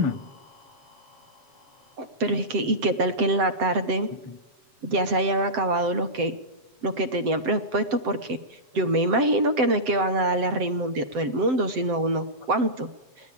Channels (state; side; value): late; left; 7.7 ms